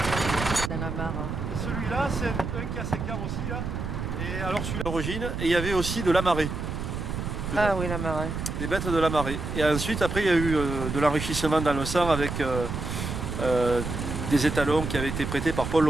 Dans la mare. Celui-là, c'est un qui a 5 ans aussi, là. Et alors celui-là, d'origine, et il y avait aussi de la marée. Ah oui, la marée. Des bêtes de la marée. Et ensuite, après, il y a eu de l'enrichissement dans le sang avec des étalons qui avaient été prêtés par Paul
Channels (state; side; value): noise; right; rumble, 4 dB below the sound